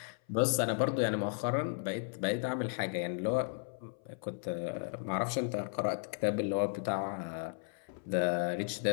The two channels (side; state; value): right; silent; 55 dB below the other